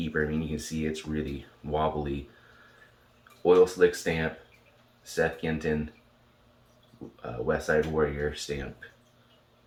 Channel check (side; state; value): both; identical; correlation 1.00